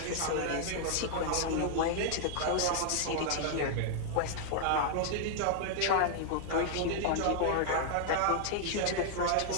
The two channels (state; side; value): different; both; correlation 0.00